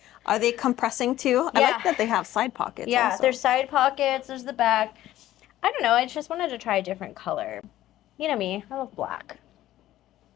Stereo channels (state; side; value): quieter; right; 14.1 dB